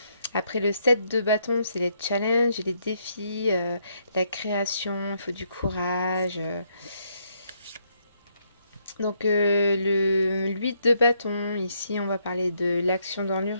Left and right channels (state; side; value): inverted; both; correlation -0.74